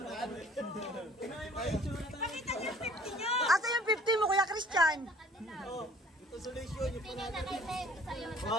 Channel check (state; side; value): normal; both; correlation 0.53